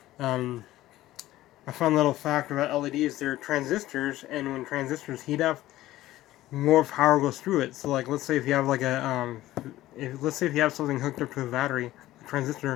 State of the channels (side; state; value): right; quieter; 15.5 dB